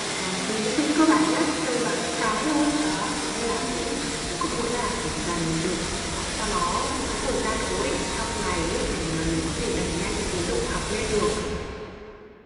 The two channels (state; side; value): identical; both; correlation 1.00